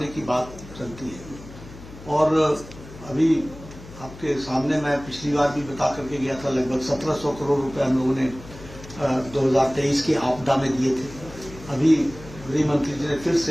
की बात चलती है, और अभी आपके सामने मैं पिछली बार भी बता करके गया था, लगभग 1700 करोड़ रुपए हम लोगों ने 2023 की आपदा में दिए थे। अभी गृह मंत्री जी ने फिर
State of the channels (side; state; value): left; noise; hum, 17 dB below the sound